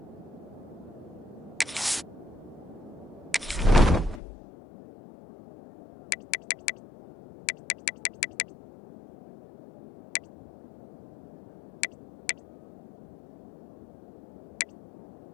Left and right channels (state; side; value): drops out; right; at 4.2 s